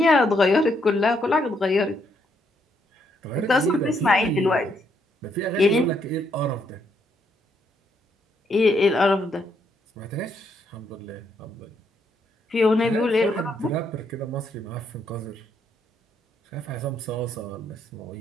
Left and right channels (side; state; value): both; normal; correlation 0.74